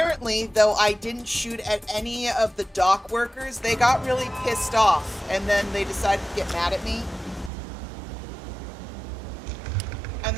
though I didn't shoot at any of the dock workers, they got really pissed off, and then they decided to get mad at me. And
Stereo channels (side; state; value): left; drops out; at 7.5 s